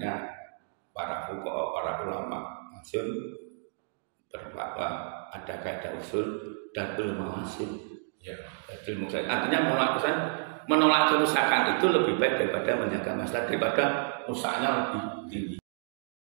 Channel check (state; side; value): silent; left; digital silence